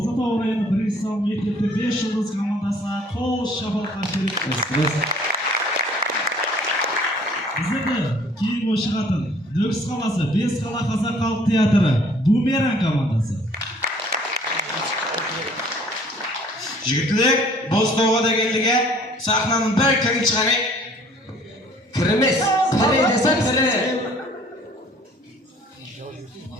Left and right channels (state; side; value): normal; both; correlation 0.56